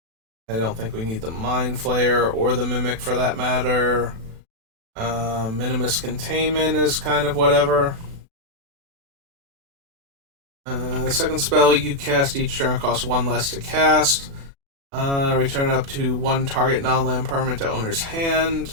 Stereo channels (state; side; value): late; left; 36 ms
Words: I don't think we need the Mind Flayer or the Mimic for that matter. Minimus Containment is kind of whatever. The second spell you cast each turn costs 1 less to cast. Return up to 1 target non-land permanent to owner's